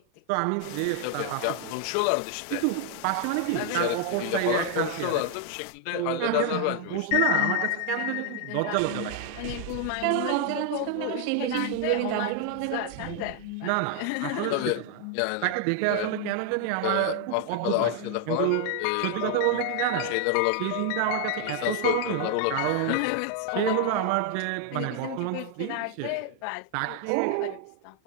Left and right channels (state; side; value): different; both; correlation 0.00